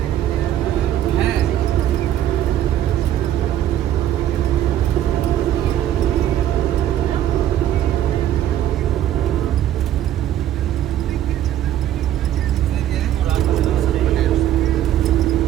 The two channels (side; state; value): left; quieter; 11.7 dB